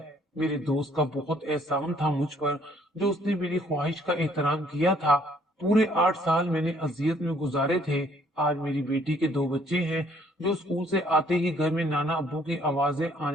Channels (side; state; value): both; normal; correlation 0.63